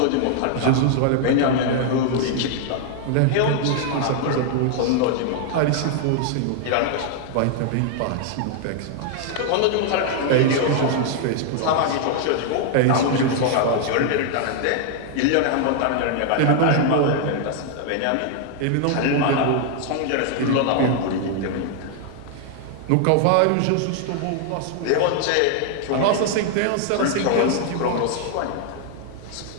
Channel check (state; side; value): different; both; correlation 0.00